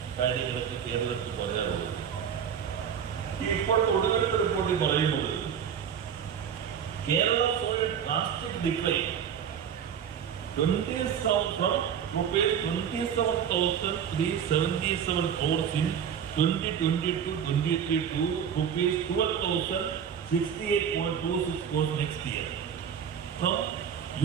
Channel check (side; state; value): left; quieter; 8.1 dB